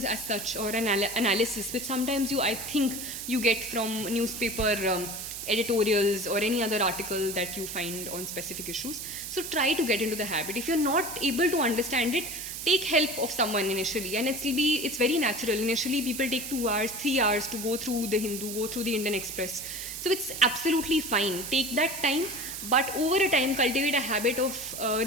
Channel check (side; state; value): right; noise; hiss, 7 dB below the sound